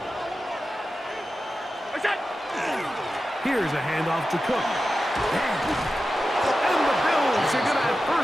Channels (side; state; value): both; normal; correlation 0.92